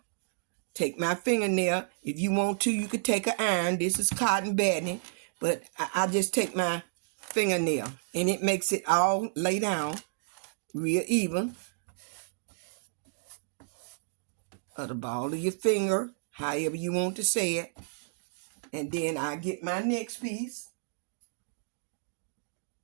Take my fingernail. If you want to, you could take an iron. This is cotton batting. But I just take my fingernail. And it makes it all lay down real even. Or the ball of your finger. However you want to say it. And then I get my next piece.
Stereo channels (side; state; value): left; silent; digital silence